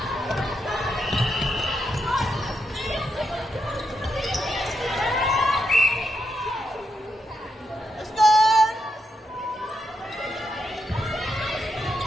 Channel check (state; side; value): normal; both; correlation 0.82